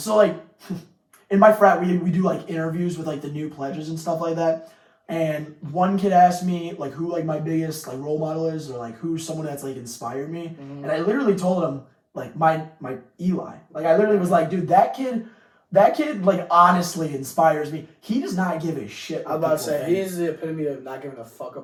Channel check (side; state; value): both; identical; correlation 1.00